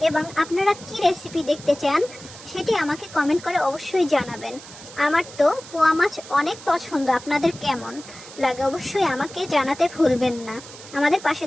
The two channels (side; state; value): right; noise; hiss, 17 dB below the sound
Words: এবং আপনারা কি রেসিপি দেখতে চান সেটি আমাকে কমেন্ট করে অবশ্যই জানাবেন। আমার তো পোয়া মাছ অনেক পছন্দ, আপনাদের কেমন লাগে অবশ্যই আমাকে জানাতে ভুলবেন না। আমাদের পাশে